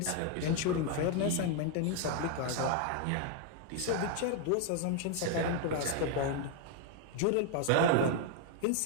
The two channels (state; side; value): different; both; correlation 0.01